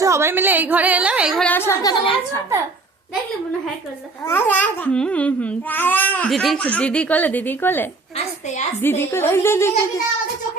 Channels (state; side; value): quieter; left; 3.7 dB